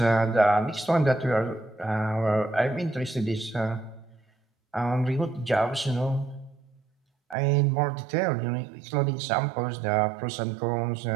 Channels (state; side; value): drops out; left; at 7.4 s